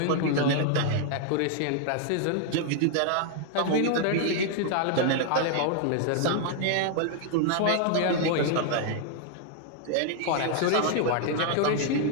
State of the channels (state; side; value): different; both; correlation 0.00